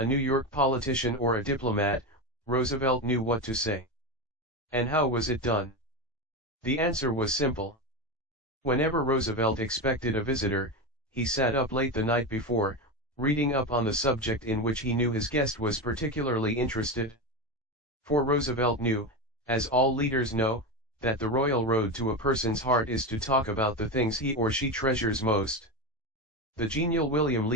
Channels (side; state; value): both; normal; correlation 0.17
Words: New York politician or a diplomat, Roosevelt knew what to say. And how was it done? The answer was simple. Whenever Roosevelt expected a visitor, he sat up late the night before, reading up on the subject in which he knew his guest was particularly interested. For Roosevelt knew, as all leaders know, that the royal road to a person's heart is to talk about the things he or she treasures most. The genial William